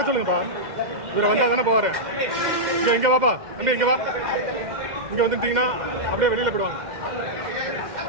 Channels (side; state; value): left; late; 2.0 ms